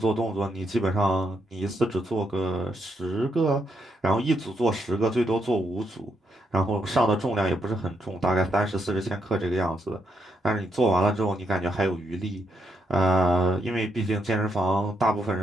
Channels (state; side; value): normal; both; correlation 0.78